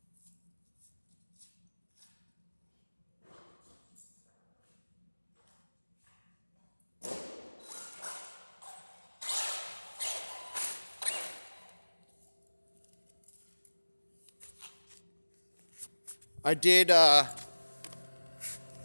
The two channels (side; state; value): both; inverted; correlation -1.00